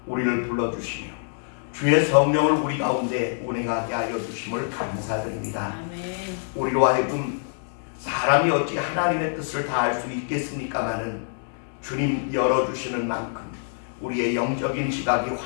우리를 불러주시며 주의 성령을 우리 가운데 운행하게 하여 주심을 감사드립니다. 아멘. 우리로 하여금 사람이 어찌 하나님의 뜻을 다 알 수 있겠습니까마는 주님 열어주시는 만큼 우리의 영적인 지각이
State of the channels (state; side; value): silent; right; digital silence